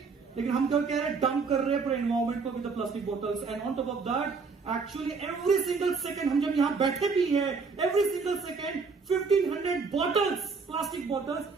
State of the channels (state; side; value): quieter; left; 4.8 dB